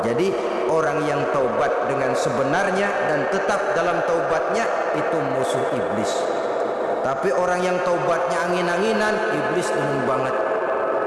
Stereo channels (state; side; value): identical; both; correlation 1.00